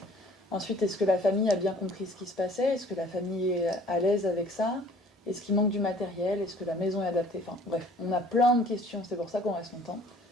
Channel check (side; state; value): both; normal; correlation 0.53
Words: Ensuite, est-ce que la famille a bien compris ce qui se passait? Est-ce que la famille est à l'aise avec ça? Est-ce qu'il manque du matériel? Est-ce que la maison est adaptée? Enfin bref, on a plein de questions, c'est pour ça qu'on reste longtemps.